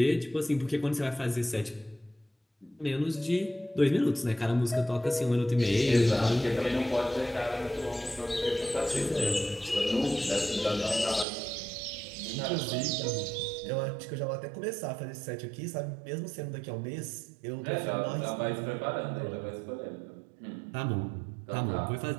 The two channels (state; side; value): drops out; left; at 11.2 s